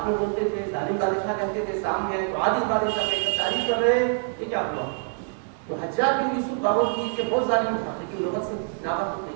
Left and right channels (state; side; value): silent; left; 58 dB below the other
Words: نے بولتے تھے ظالم بادشاہ کہتے تھے، سامنے آئے تو عادل بادشاہ کہتے ہیں، تعریف کر رہے ہیں، یہ کیا ہوا؟ تو حجاج بن یوسف باور کی کہ بہت ظالم تھا لیکن لغت سے ناواقف